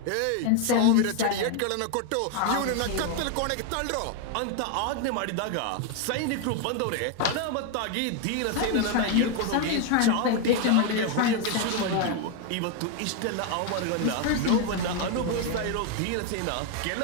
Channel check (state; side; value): different; both; correlation 0.01